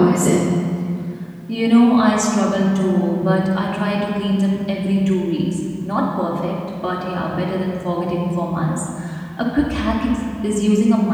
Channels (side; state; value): both; identical; correlation 1.00